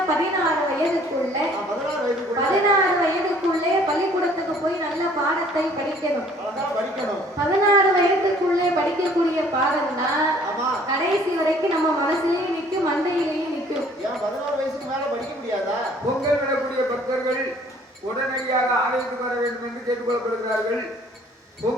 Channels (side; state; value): both; normal; correlation 0.56